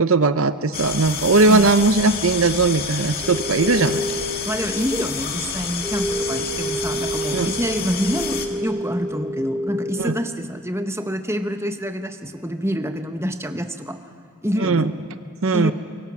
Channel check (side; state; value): both; normal; correlation 0.29